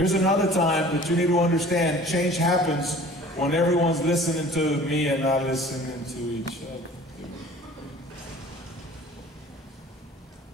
another time that you need to understand. Change happens when everyone's listening to me and not listening to each other.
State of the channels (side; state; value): both; normal; correlation 0.46